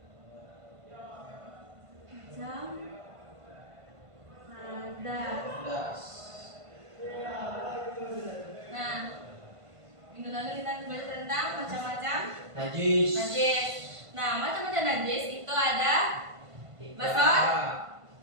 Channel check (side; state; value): left; late; 1.5 ms